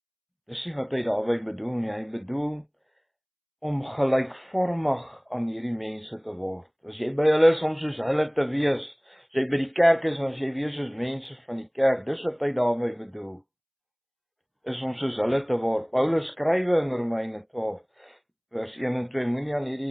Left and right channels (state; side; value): identical; both; correlation 1.00